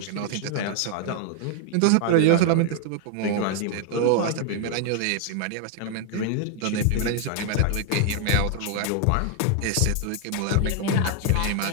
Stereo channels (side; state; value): both; different; correlation 0.00